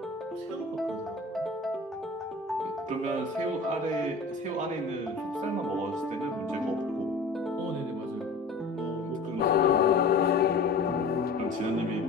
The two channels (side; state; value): right; quieter; 3.5 dB